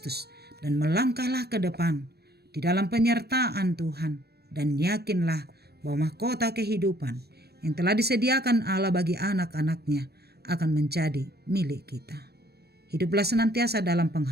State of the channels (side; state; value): left; late; 0.47 ms